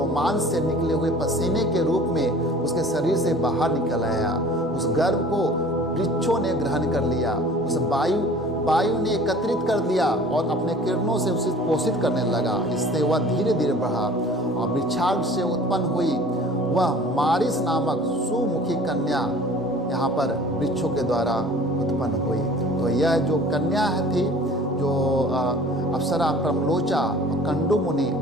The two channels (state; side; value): normal; both; correlation 0.46